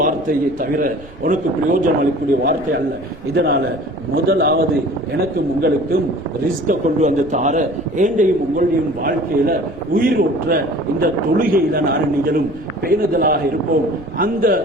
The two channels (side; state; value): right; noise; rumble, 21 dB below the sound